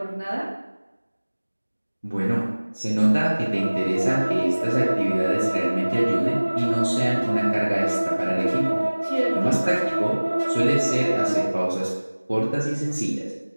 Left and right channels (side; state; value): both; inverted; correlation -1.00